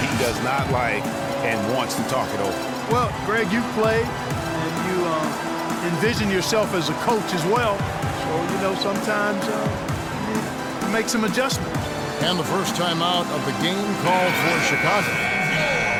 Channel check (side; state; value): both; identical; correlation 1.00